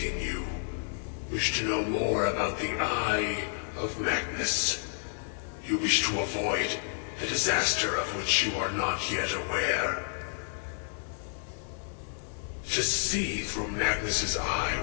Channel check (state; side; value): silent; right; digital silence